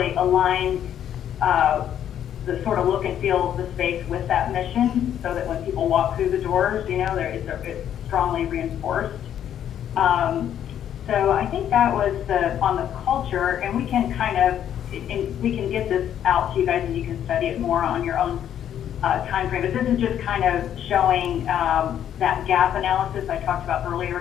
align the sort of look and feel of the space with that mission, so that when people walk through the doors, it's strongly reinforced. So I think that was on the culture, and we can we can get this out to you guys and you can study it more on your own time frame. But this is just kind of showing that gap analysis I talked about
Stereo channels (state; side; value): quieter; right; 10.1 dB